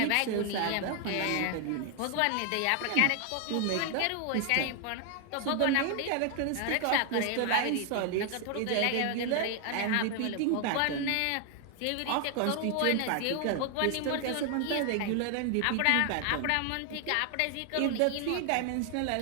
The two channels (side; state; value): both; different; correlation 0.00